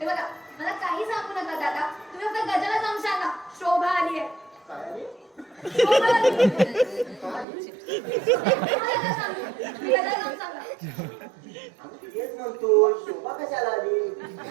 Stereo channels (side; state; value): left; drops out; at 7.5 s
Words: बघा, मला काही सांगू नका दादा. तुम्ही फक्त गजाला जाऊन सांगा, शोभा आली आहे. काय रे? शोभा आली. काय? मला काय सांगू? तुम्ही गजाला जाऊन सांगा. आम्ही तेच म्हणतो शोभा कशाला आली?